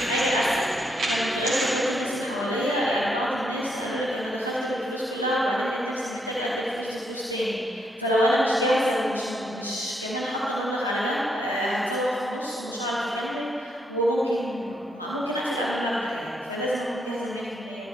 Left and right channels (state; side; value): normal; both; correlation 0.76